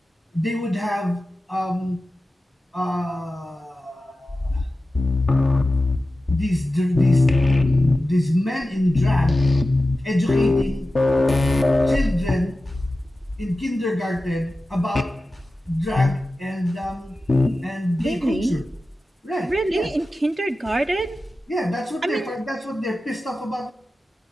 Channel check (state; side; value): normal; both; correlation 0.94